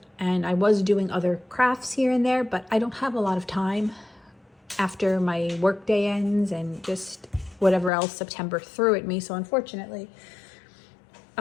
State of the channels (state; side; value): drops out; right; at 7.9 s